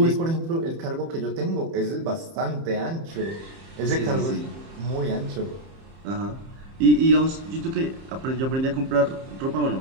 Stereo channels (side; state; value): left; late; 30 ms